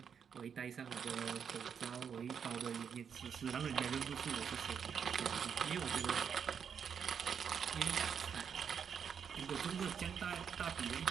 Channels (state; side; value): quieter; left; 7.2 dB